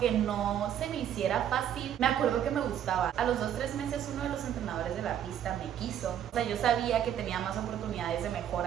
no se me hiciera fácil, me acuerdo que me gustaba. A los 2-3 meses uno de los entrenadores de la pista me quiso. O sea, yo sabía que tenía más oportunidades de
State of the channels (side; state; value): left; quieter; 10.1 dB